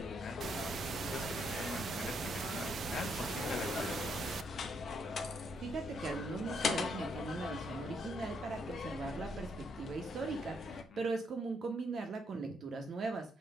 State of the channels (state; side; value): normal; both; correlation 0.74